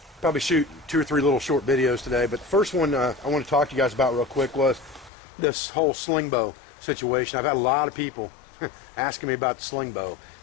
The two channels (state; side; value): drops out; right; at 5.1 s